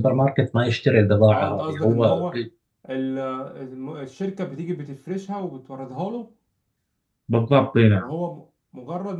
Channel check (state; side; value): identical; both; correlation 1.00